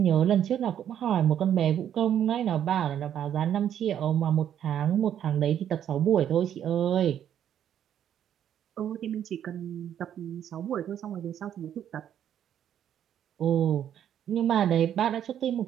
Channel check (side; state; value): left; quieter; 9.9 dB